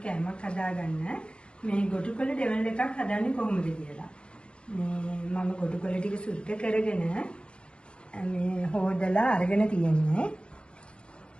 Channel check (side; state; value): right; late; 0.056 ms